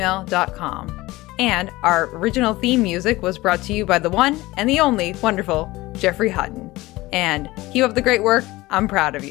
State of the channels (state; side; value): quieter; right; 19.4 dB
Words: And our original theme music was brought to you by the one and the only wonderful Jeffrey Hutton. And keep up the great work. I'm proud of